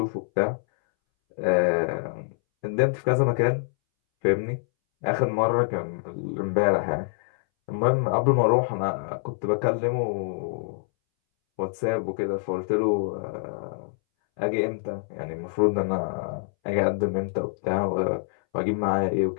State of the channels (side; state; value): right; silent; 61 dB below the other